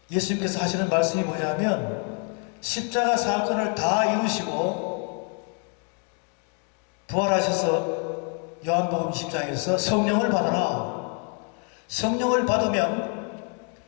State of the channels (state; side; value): quieter; right; 39.5 dB